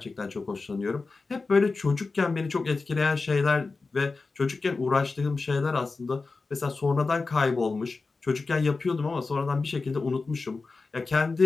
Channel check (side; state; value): right; quieter; 4.0 dB